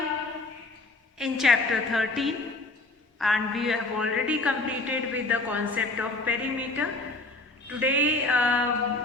in chapter 13 and we have already completed with the concept of perimeter. Today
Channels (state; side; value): quieter; right; 3.2 dB